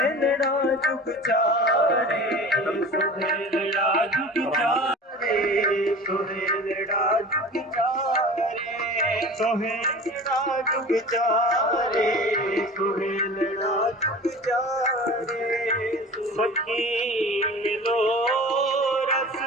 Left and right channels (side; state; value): both; normal; correlation 0.38